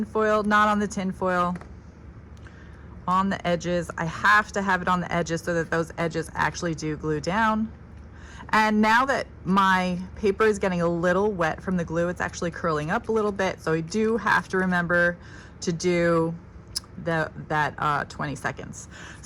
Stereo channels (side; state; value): both; identical; correlation 1.00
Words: foil, not on the tin foil. On the edges. I have to have it on the edges so that those edges actually do glue down. And now that my paper is getting a little wet from the glue, it's actually curling up a little bit. So I do have to remember to do that 20 seconds.